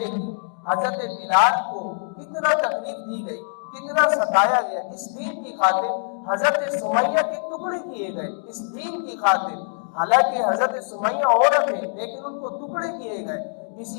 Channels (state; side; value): silent; right; digital silence